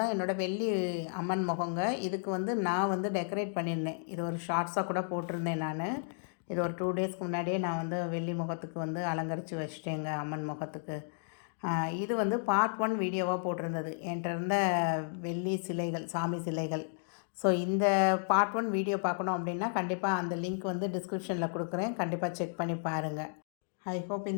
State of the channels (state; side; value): silent; right; digital silence